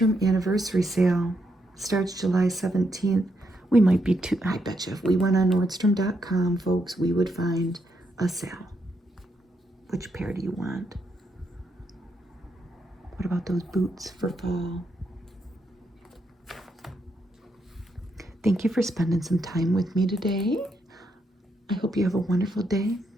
anniversary sale starts July 17th. We might be too, I bet you if we went on Nordstrom.com, folks, we would find a sale. Which pair do you want? What about those boots for fall? Thank you for spending some time with me today. I hope you have a wonderful day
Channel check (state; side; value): normal; both; correlation 0.79